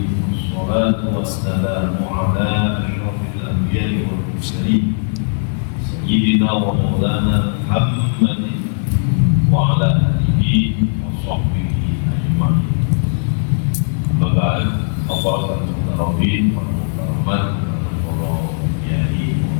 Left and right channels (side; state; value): right; silent; digital silence